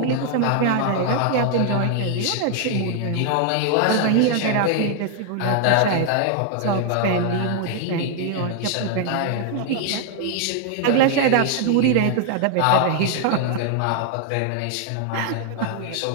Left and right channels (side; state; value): both; different; correlation 0.00